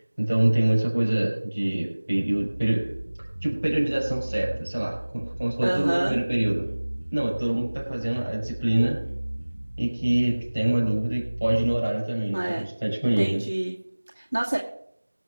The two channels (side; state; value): both; inverted; correlation -1.00